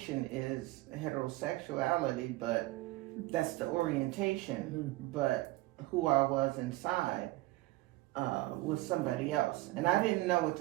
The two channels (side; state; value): left; quieter; 19.3 dB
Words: is heterosexuality, but that's the orientation. Mm-hmm. But who I was inside was somebody else, and I didn't know what